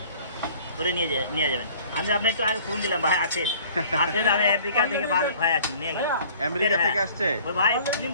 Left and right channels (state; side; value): inverted; both; correlation -0.52